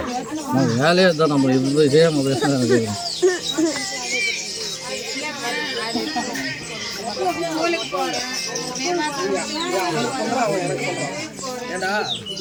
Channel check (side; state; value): both; identical; correlation 1.00